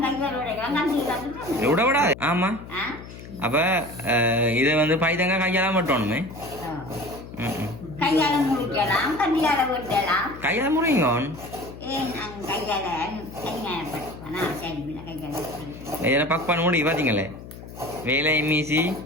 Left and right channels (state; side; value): noise; left; hum, 14 dB below the sound